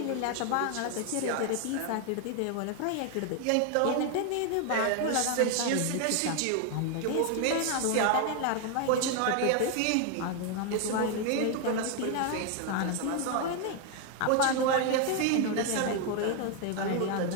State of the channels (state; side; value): different; both; correlation 0.01